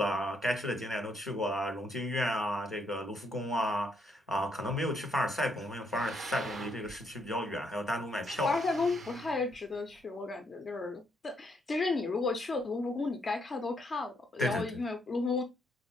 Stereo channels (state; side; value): normal; both; correlation 0.74